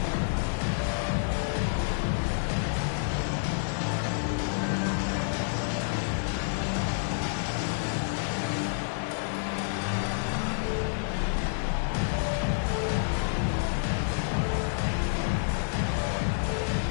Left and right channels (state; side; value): silent; right; 59 dB below the other